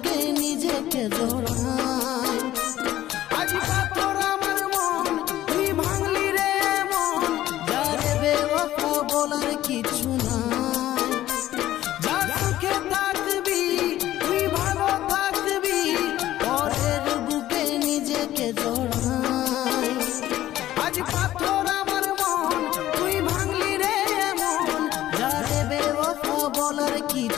নিজেকে জড়াই আজ পাথর আমার মন তুই ভাঙলি রে মন যারে বেওয়াফা বলার কিছু নাই যা সুখে থাকবি তুই ভালো থাকবি পরের বুকে নিজেকে জড়াই আজ পাথর আমার মন তুই ভাঙলি রে মন যারে বেওয়াফা বলার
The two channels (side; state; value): right; quieter; 13.9 dB